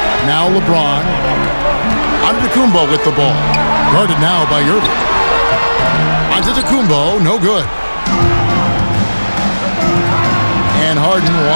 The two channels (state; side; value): inverted; both; correlation -1.00